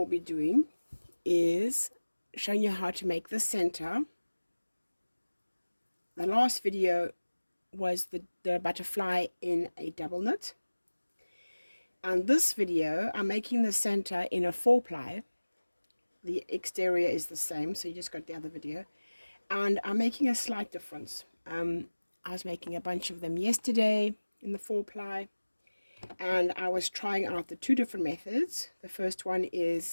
be doing is showing you how to make the center. The last video was the butterfly in a double knit. And this video, I'm making the center in a 4-ply. The exterior is the same, so you just got the other video. And I'm making a slight difference. I was making a bunch of them yesterday in the 4-ply, and I was trying out the two different methods. The first one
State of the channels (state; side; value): inverted; both; correlation -1.00